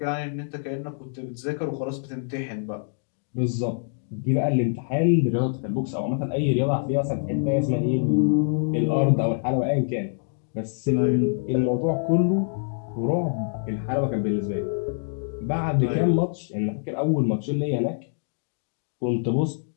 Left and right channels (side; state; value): right; silent; digital silence